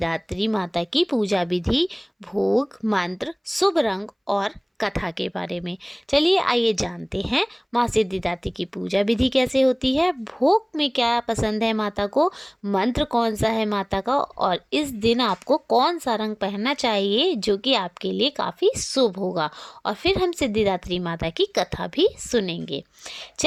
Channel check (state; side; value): identical; both; correlation 1.00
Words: माता की पूजा विधि, भोग, मंत्र, शुभ रंग और कथा के बारे में। चलिए आइए जानते हैं माँ सिद्धिदात्री की पूजा विधि कैसे होती है, भोग में क्या पसंद है माता को, मंत्र कौन सा है माता का, और इस दिन आपको कौन सा रंग पहनना चाहिए जो कि आपके लिए काफ़ी शुभ होगा। और फिर हम सिद्धिदात्री माता की कथा भी सुनेंगे।